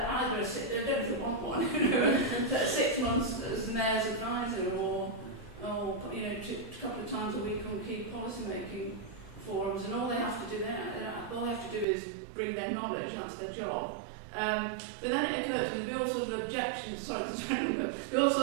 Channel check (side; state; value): left; drops out; at 11.9 s